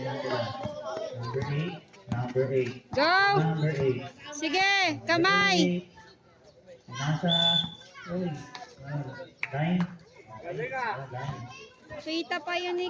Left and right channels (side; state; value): both; identical; correlation 1.00